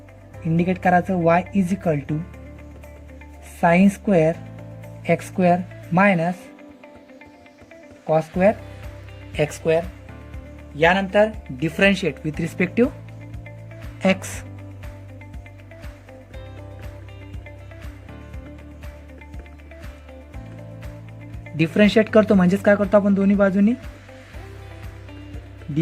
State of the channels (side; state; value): both; identical; correlation 1.00